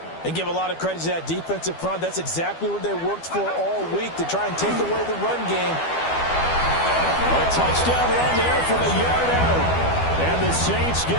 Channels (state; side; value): late; right; 12 ms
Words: And give a lot of credit to that defensive front. That's exactly what they worked for all week, to try and take away the run game. A touchdown run there from a yard out. And the Saints